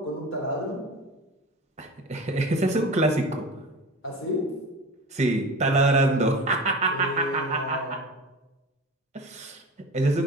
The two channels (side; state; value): both; normal; correlation 0.33